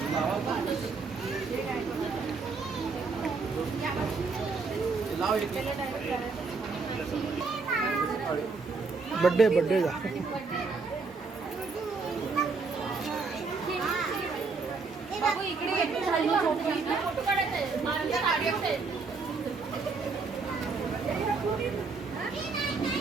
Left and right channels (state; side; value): quieter; left; 4.4 dB